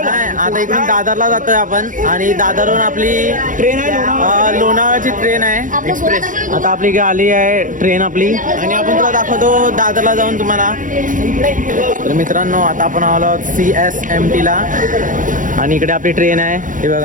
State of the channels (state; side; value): late; left; 0.38 ms